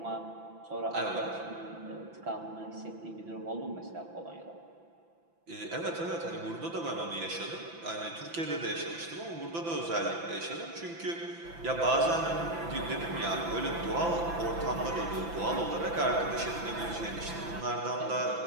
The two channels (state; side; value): late; left; 5.9 ms